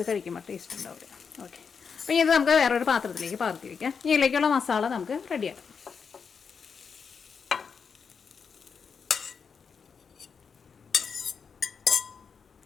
കഴിക്കുമ്പോൾ ടേസ്റ്റ് ഉണ്ടാവില്ല. ഓക്കെ, അപ്പോൾ ഇത് നമുക്ക് വേറൊരു പാത്രത്തിലേക്ക് പകർത്തി വയ്ക്കാം. ഇതിലേക്കുള്ള മസാല നമുക്ക് റെഡിയാക്കാം.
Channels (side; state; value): right; quieter; 6.0 dB